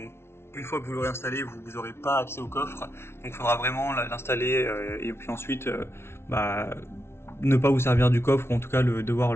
une fois que vous l'aurez installé, vous n'aurez pas accès au coffre, donc il faudra vraiment l'installer et puis ensuite ne pas vous servir du coffre, ou en tout cas devoir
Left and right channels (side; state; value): right; late; 0.12 ms